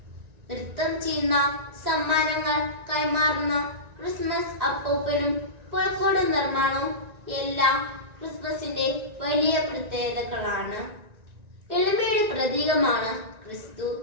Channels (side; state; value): left; late; 1.9 ms